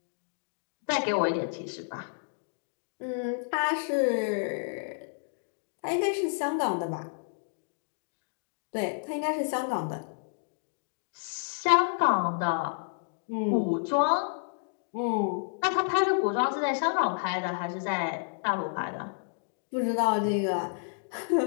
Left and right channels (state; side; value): silent; right; digital silence